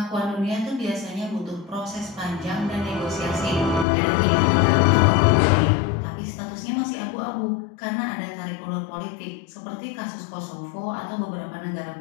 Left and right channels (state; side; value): drops out; right; at 3.9 s